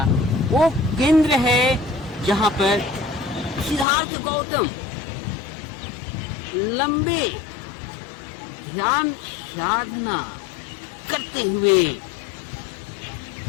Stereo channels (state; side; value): drops out; right; at 3.9 s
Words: वो केंद्र है जहाँ पर सिद्धार्थ गौतम लंबे ध्यान साधना करते हुए